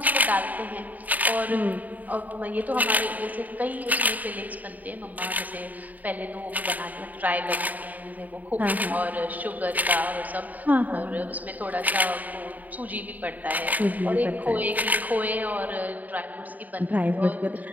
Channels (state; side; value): late; left; 0.079 ms